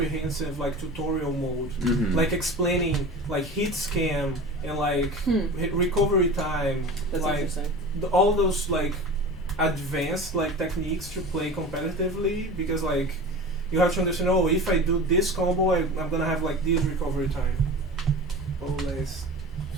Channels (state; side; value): normal; both; correlation 0.33